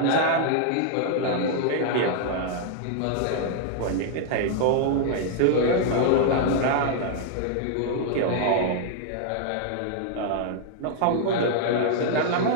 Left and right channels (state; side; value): different; both; correlation -0.01